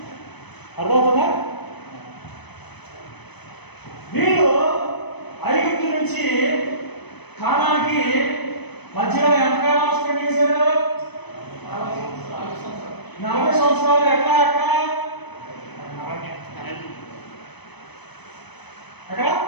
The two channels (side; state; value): right; late; 0.99 ms